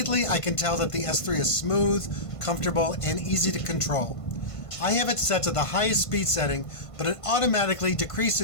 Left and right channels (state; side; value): late; right; 1.5 ms